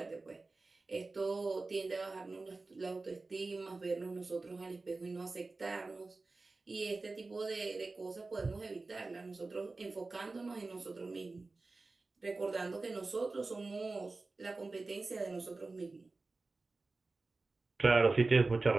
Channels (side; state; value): left; quieter; 3.6 dB